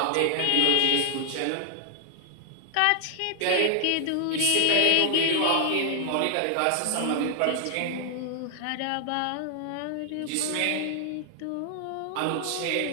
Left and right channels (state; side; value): different; both; correlation 0.00